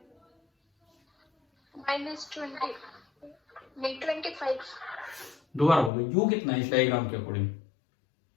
-20 नहीं 25 दोबारा बोलो, यू कितना है इस डायग्राम के अकॉर्डिंग?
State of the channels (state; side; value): drops out; right; at 5.9 s